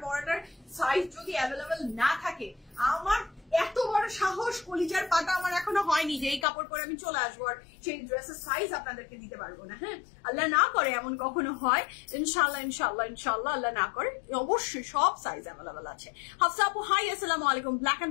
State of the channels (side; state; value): right; drops out; at 6.5 s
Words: পরাটার সাইজ যদি অ্যাভেলেবেল না থাকে, আমার এত বড় সাহস, কলিজার পাতা আমার এখনো হয়নি যে এই কাপড় পরে আমি চলে আসবো আর সেই ড্রেসের সাইজ আপনাদেরকে দিতে পারবো না। হ্যাঁ আল্লাহ না করে এমন কখনো হয়, ইনশাল্লাহ আল্লাহ না করে অবশ্যই সব সাইজ অ্যাভেলেবেল আছে। হাফসা আপু হাই, আসসালামু আলাইকুম। ব্ল্যাক